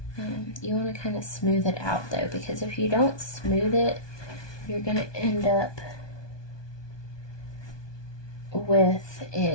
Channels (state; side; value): late; right; 1.2 ms